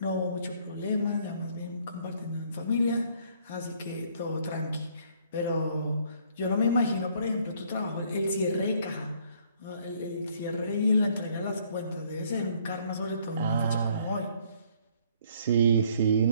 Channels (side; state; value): both; inverted; correlation -0.63